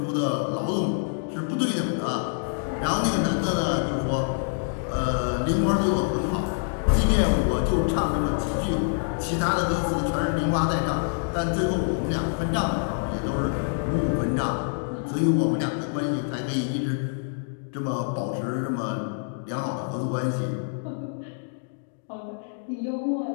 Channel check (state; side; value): silent; right; digital silence